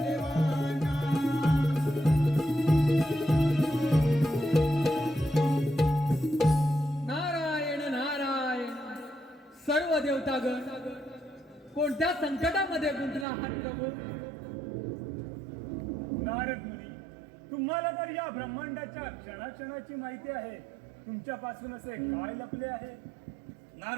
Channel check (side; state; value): left; drops out; at 13.2 s